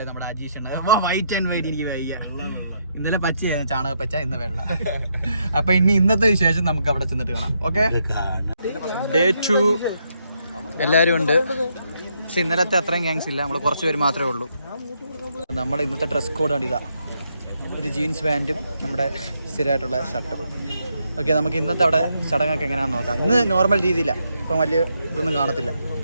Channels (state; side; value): inverted; both; correlation -0.77